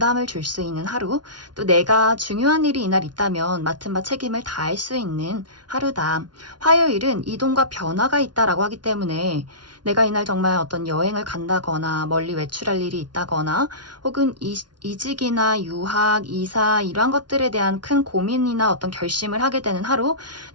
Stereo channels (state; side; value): late; left; 0.70 ms